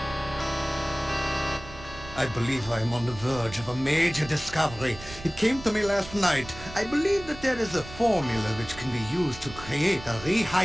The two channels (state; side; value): noise; right; rumble, 15 dB below the sound